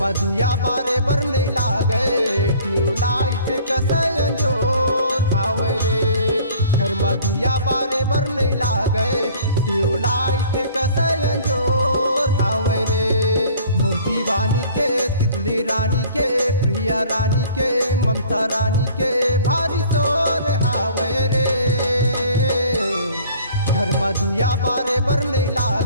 में दिया बारे बर नहीं लागे ट्यूबलाइट कसयन जोर हावे रे। घर में दिया बारे बर नहीं लागे ट्यूबलाइट कसयन जोर हावे रे। मोर दीवानी के तितली रानी के प्रिय रानी के ममता रानी के भारी शोर हावे रे। घर में दिया बारे बर नहीं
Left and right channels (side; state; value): both; inverted; correlation -0.51